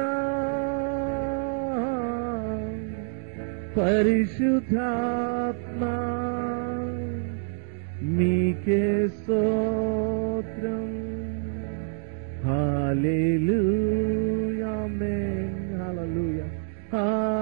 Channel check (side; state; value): left; silent; digital silence